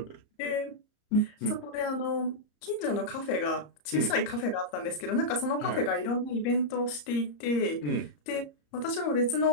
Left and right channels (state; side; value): late; right; 34 ms